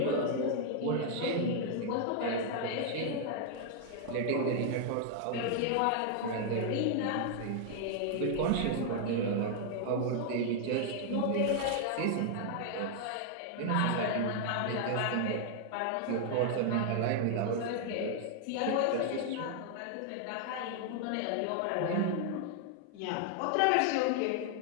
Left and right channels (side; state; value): both; different; correlation 0.00